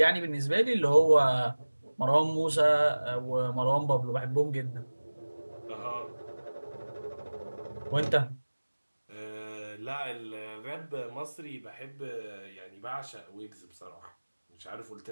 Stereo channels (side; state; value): both; inverted; correlation -1.00